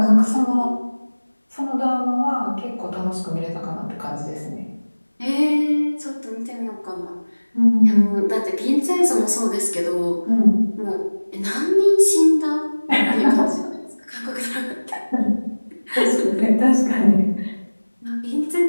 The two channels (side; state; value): both; inverted; correlation -1.00